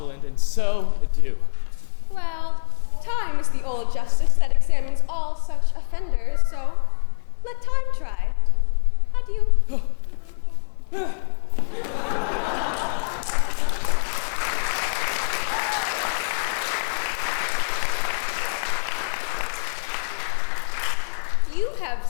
and so do. Well, time is the old justice that examines all such offenders, so let time try. Adieu. You have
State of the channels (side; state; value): right; silent; 56 dB below the other